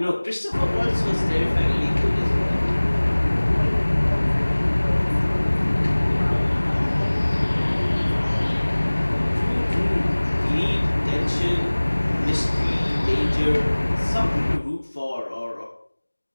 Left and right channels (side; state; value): both; inverted; correlation -1.00